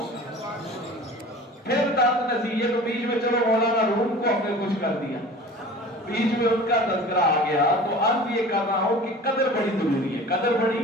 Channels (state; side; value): normal; both; correlation 0.41